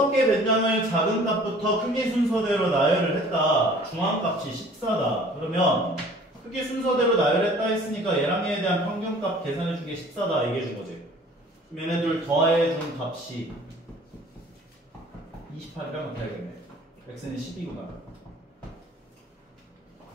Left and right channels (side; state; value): both; normal; correlation 0.50